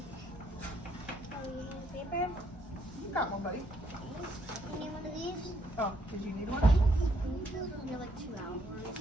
Paper? You got one, buddy. You need one of these? Oh, did you need one? They're like 2 hours.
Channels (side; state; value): both; normal; correlation 0.71